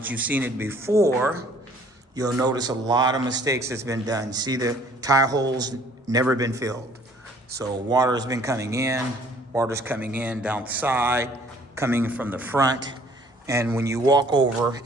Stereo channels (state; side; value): normal; both; correlation 0.57